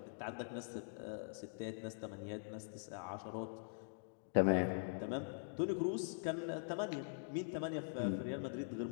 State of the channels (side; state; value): right; silent; digital silence